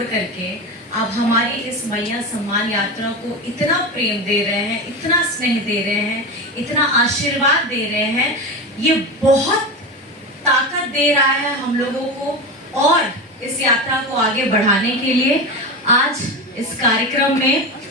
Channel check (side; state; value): both; normal; correlation 0.22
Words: करके अब हमारी इस मैया सम्मान यात्रा को इतना प्रेम दे रहे हैं, इतना स्नेह दे रहे हैं, इतना आशीर्वाद दे रहे हैं। ये बहुत ताकत दे रहा है हम लोगों को और इस यात्रा को आगे बढ़ाने के लिए। आज इस कार्यक्रम में